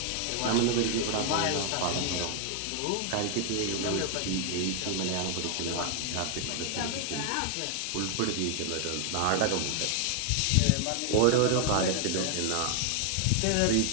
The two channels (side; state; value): both; different; correlation 0.00